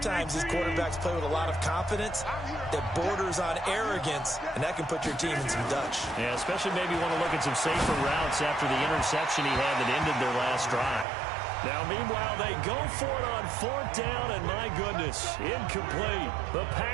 these quarterbacks play with a lot of confidence that borders on arrogance, and that can put your team in some Dutch. Yeah, especially maybe want to look at some safer routes after the interception he had that ended their last drive. Now, meanwhile, they go for it on 4th down, and my goodness, incomplete. The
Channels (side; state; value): left; drops out; at 11.1 s